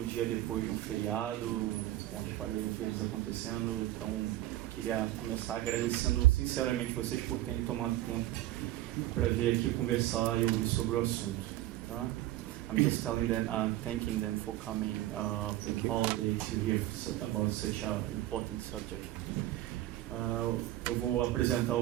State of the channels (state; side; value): quieter; left; 15.1 dB